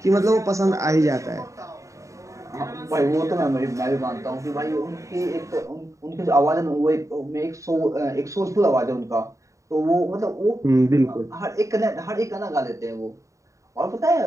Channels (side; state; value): left; late; 0.15 ms